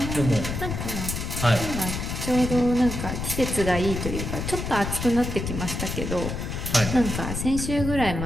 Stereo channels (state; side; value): noise; left; rumble, 4 dB below the sound